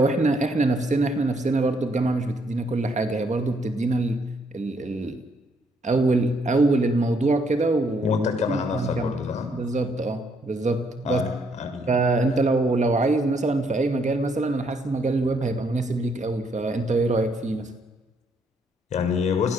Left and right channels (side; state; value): both; normal; correlation 0.71